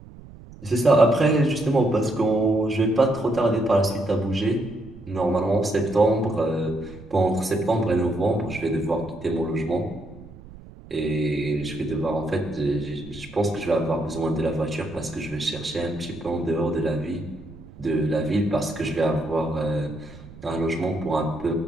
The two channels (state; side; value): noise; right; rumble, 18 dB below the sound